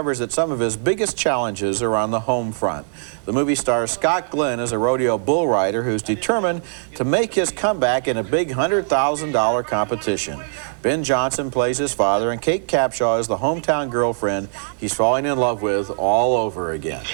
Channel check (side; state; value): left; silent; digital silence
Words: that some of his biggest challenges are on the home front. The movie stars Scott Glenn as a rodeo bull rider who's determined to make his comeback in a big $100,000 competition. Ben Johnson plays his father, and Kate Capshaw is the hometown girlfriend he's falling in love with all over again.